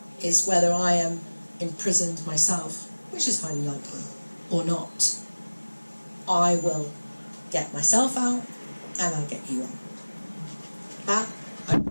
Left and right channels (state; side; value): inverted; both; correlation -1.00